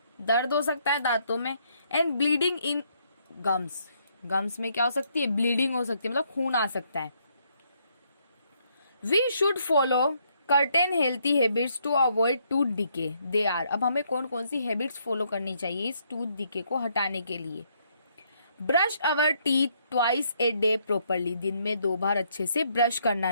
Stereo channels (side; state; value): both; inverted; correlation -0.72